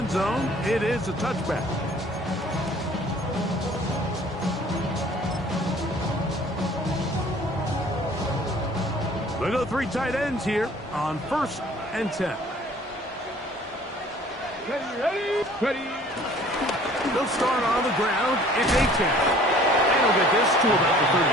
zone. It is a touchback. They go 3 tight ends here on 1st and 10. Ready. They'll start on the ground. It's a 10. They'll get this to about the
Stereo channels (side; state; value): both; normal; correlation 0.52